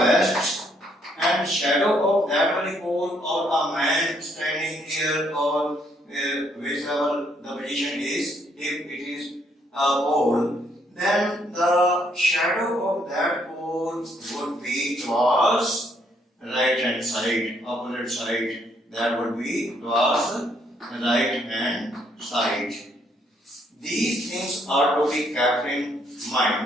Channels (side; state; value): both; normal; correlation 0.70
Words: and shadow of that very pole or a man standing here or whichever the position is, if it is a pole, then the shadow of that pole would be towards right hand side, opposite side. That would be towards right hand side. These things are to be kept in